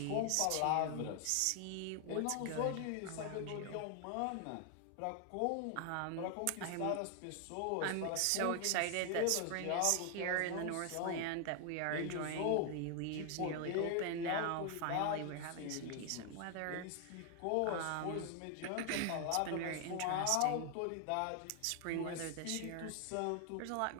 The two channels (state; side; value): different; both; correlation 0.00